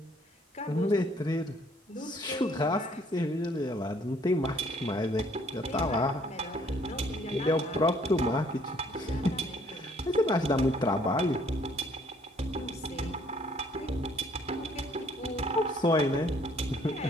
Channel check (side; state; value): both; normal; correlation 0.62